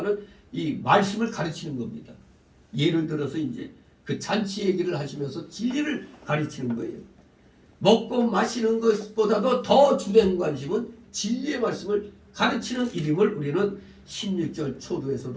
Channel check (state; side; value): identical; both; correlation 1.00